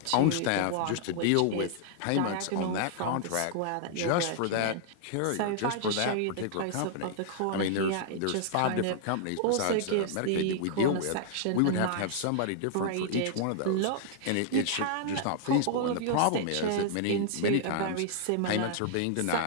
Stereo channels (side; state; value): both; different; correlation -0.01